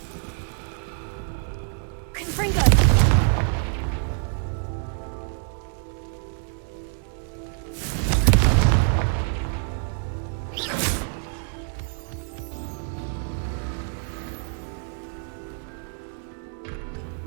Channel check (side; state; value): left; silent; 61 dB below the other